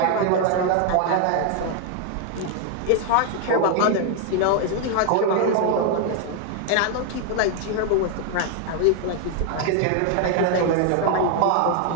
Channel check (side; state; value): both; different; correlation 0.00